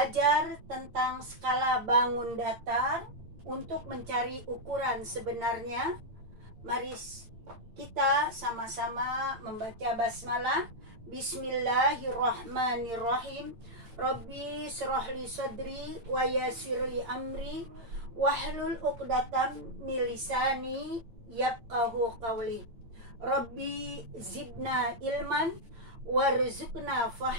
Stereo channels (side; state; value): left; late; 8.8 ms